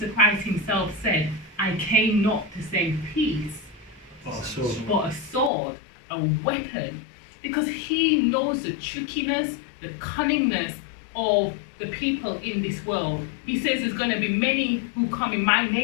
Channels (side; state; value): right; drops out; at 5.5 s